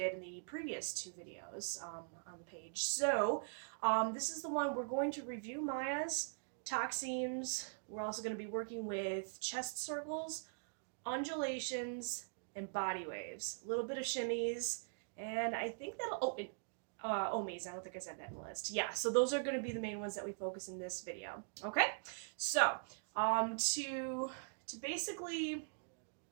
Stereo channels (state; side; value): silent; left; digital silence